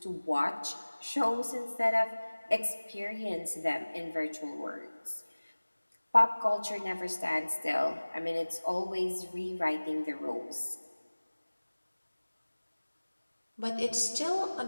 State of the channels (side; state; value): both; inverted; correlation -1.00